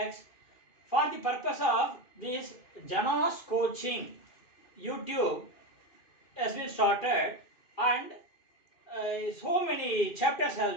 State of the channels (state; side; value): late; right; 2.5 ms